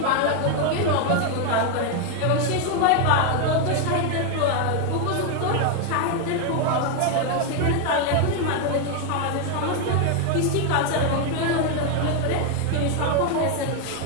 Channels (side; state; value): both; different; correlation 0.01